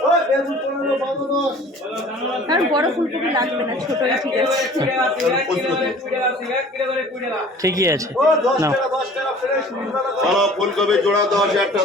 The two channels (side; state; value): both; normal; correlation 0.48